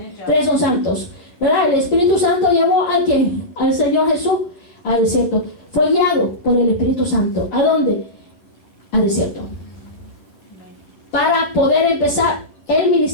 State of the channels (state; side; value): late; right; 10 ms